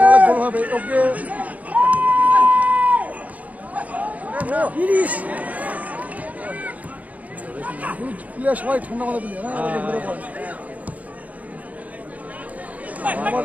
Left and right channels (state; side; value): late; left; 0.072 ms